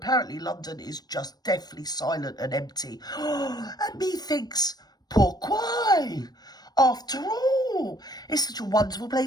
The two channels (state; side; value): late; right; 0.19 ms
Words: London is just deathly silent and empty. And methinks, pourquoi? After all, it's such a wonderful